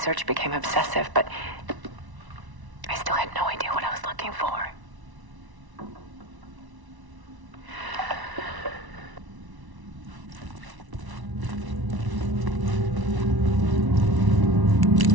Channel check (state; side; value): late; left; 1.1 ms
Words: became obsessive, but I still had no idea what I was looking for.